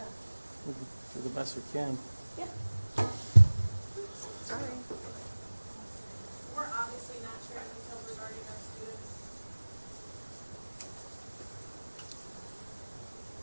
We'll do the best we can. Yeah. Sorry. We're obviously not sharing details regarding our students.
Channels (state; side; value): inverted; both; correlation -1.00